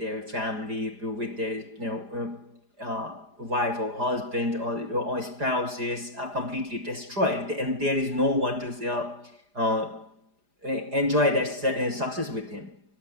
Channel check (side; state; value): left; late; 4.9 ms